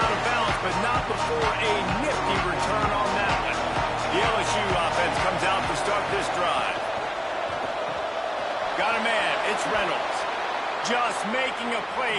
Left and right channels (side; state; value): both; identical; correlation 1.00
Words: of bounds, but not before a nifty return on that one. The LSU offense comes out to start this drive. Got a man, it's Reynolds. Just making a